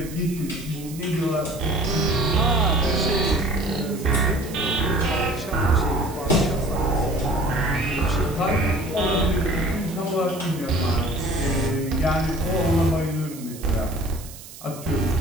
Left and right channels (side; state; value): right; noise; hiss, 16 dB below the sound